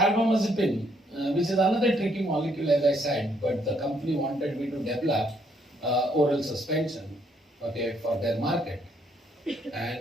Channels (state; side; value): normal; both; correlation 0.70